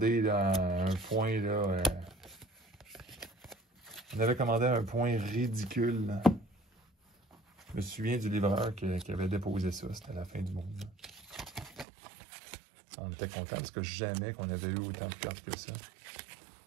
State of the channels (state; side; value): drops out; left; at 11.9 s